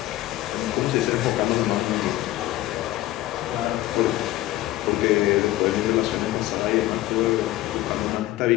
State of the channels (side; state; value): right; quieter; 15.9 dB